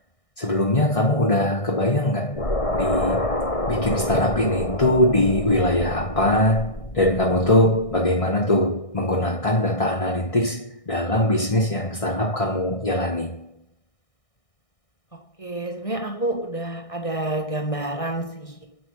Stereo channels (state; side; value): late; right; 1.6 ms